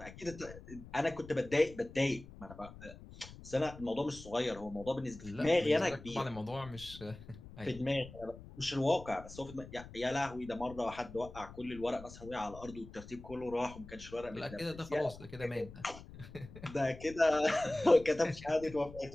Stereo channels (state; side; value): noise; left; rumble, 16 dB below the sound